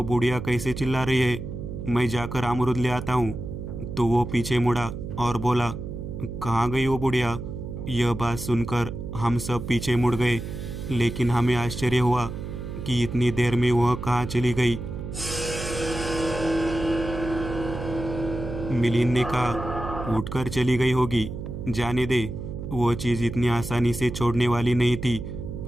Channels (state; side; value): noise; right; hum, 7 dB below the sound